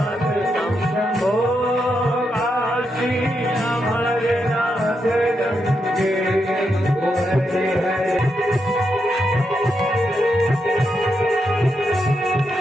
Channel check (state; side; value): normal; both; correlation 0.83